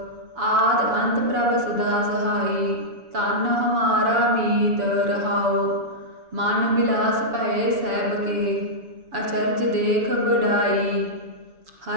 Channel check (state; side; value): late; left; 7.0 ms